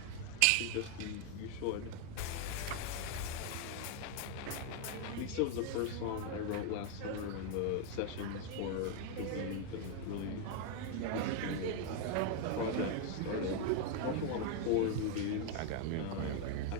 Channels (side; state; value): both; different; correlation 0.00